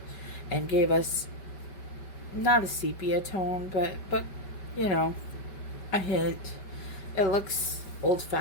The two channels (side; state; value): right; late; 5.2 ms